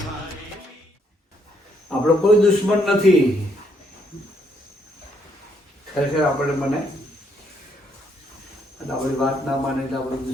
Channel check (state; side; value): normal; both; correlation 0.72